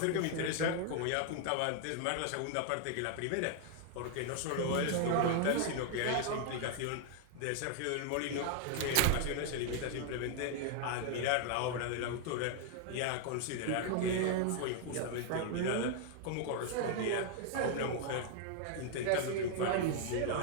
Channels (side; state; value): both; different; correlation 0.00